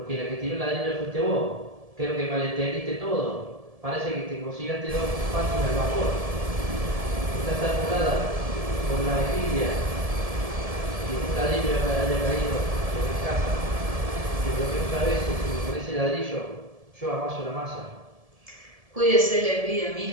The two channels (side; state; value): left; late; 1.7 ms